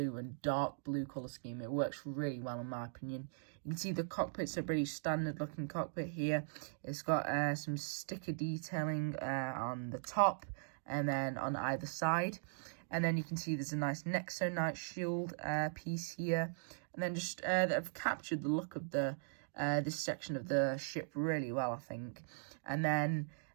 and dark blue colour scheme. It works really well, in my opinion. You can see the cockpit's a pretty standard looking cockpit here. It's got some sticker detailing on the top and then on either side. And then you can see there's a nice Nexo shield piece here. And then just they've captured the look of the this section of the ship really well, I think. And then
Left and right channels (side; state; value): left; silent; digital silence